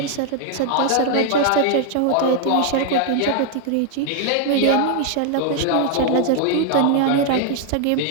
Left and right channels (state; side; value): different; both; correlation 0.00